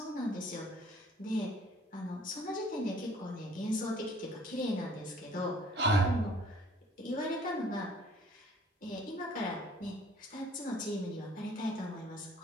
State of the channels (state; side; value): normal; both; correlation 0.56